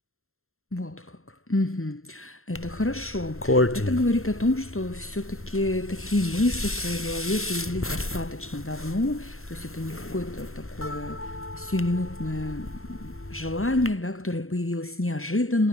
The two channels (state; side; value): late; right; 0.62 ms